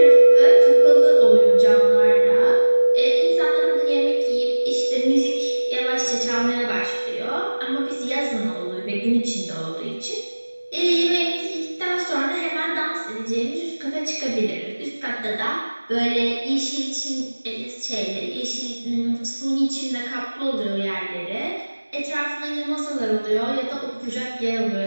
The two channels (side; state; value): both; inverted; correlation -1.00